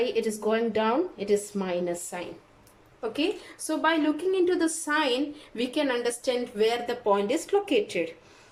it is going down. It is minus sign. Okay, so by looking into the sign, we can understand where the point is located.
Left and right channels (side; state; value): both; identical; correlation 1.00